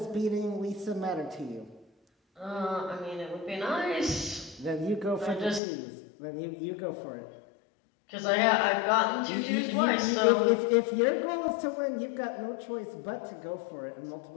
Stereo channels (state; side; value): drops out; right; at 5.6 s